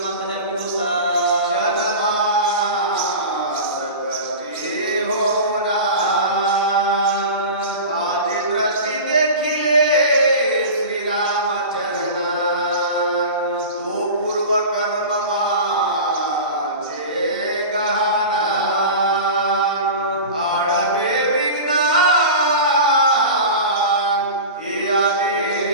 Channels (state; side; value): inverted; both; correlation -0.31